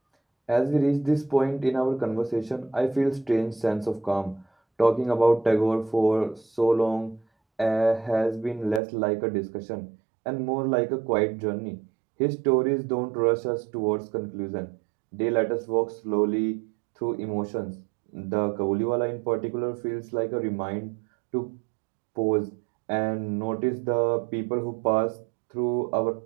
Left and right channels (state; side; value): drops out; left; at 8.8 s